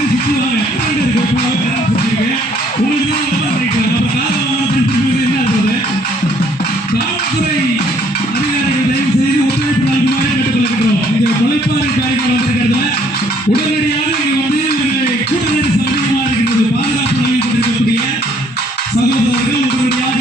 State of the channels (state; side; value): normal; both; correlation 0.64